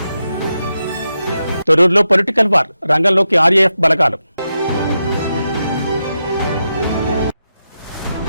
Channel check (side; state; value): both; inverted; correlation -0.87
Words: తొర్రూరులో పొలిటికల్ వార్, రంగంలోకి ఆర్ఏఎఫ్ బలగాలు.